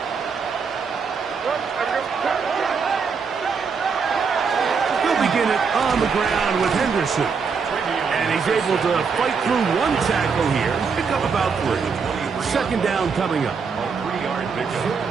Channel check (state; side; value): quieter; left; 5.6 dB